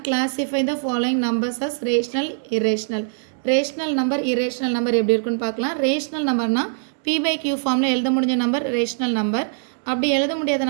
Classify the following numbers as rational, irrational. Rational number, irrational number எப்படி இருக்குன்னு பார்க்கலாம். Rational numberனா P by Q formல எழுத முடிஞ்ச number rational number. அப்படி எழுத முடியாத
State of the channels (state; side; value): silent; left; digital silence